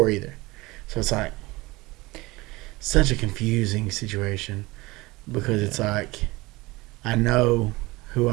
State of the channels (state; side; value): quieter; left; 21.6 dB